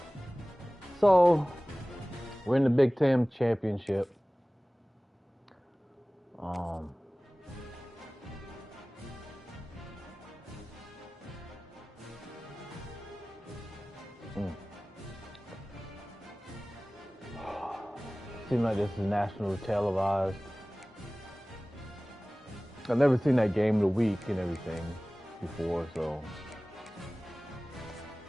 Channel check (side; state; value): both; normal; correlation 0.98